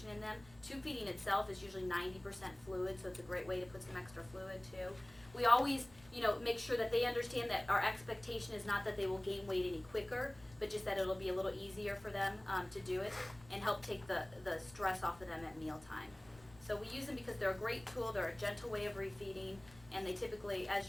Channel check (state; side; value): noise; left; rumble, 23 dB below the sound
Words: in them. Tube feeding itself is usually 90% fluid, so it's a great way to put some extra fluid too. We always, make sure that they understand that our expectation is not that they will gain weight any quicker, but just that it'll be a little easier for them to do it and help take the stress off of them at mealtime. So we use them because they're a great tool, they're a gentle way of refeeding, and they typically, as